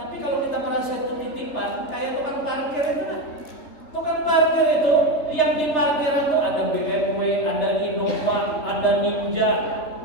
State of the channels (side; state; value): right; late; 3.4 ms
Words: kalau kita merasa itu titipan, kayak tukang parkir itu kan. Tukang parkir itu yang